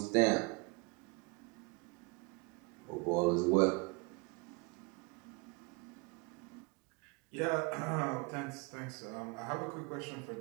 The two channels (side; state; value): left; quieter; 28.4 dB